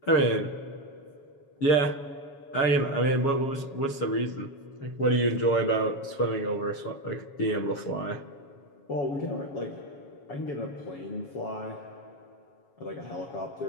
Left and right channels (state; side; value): late; right; 7.2 ms